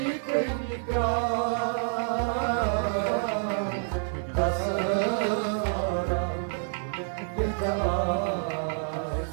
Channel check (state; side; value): silent; left; digital silence